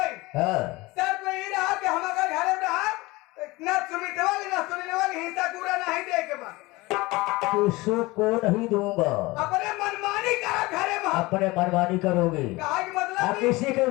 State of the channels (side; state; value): right; quieter; 21.7 dB